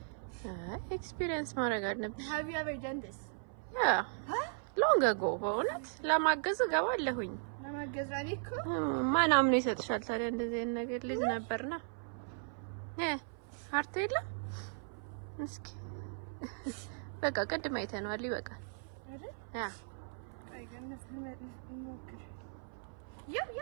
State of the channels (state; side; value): silent; left; 53 dB below the other